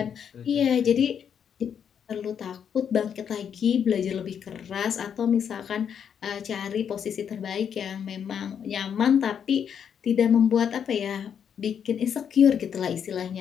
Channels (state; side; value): quieter; right; 8.0 dB